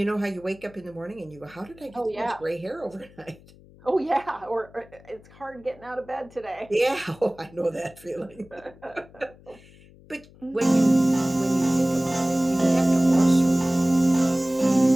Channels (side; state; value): left; noise; hum, 24 dB below the sound